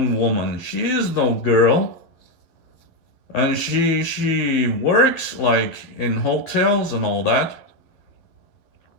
woman. She is no girl. And she works like in hotels and all that.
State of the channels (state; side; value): late; right; 11 ms